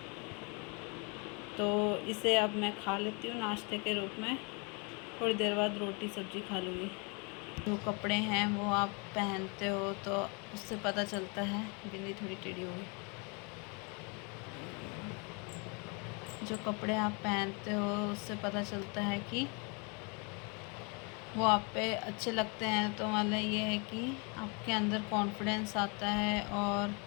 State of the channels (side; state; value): right; quieter; 32.7 dB